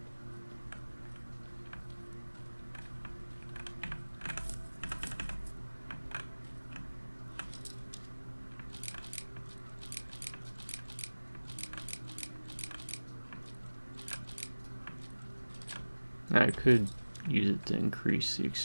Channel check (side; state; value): both; inverted; correlation -1.00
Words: I could use it to increase the